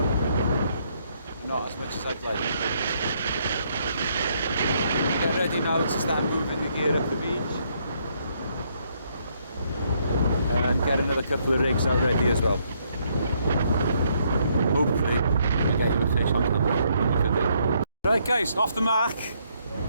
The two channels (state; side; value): inverted; both; correlation -0.72